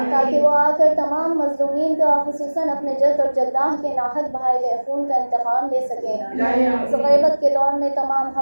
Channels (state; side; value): inverted; both; correlation -1.00